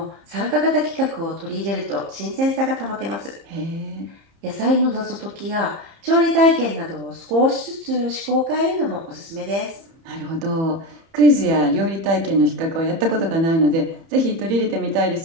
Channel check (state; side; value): late; left; 30 ms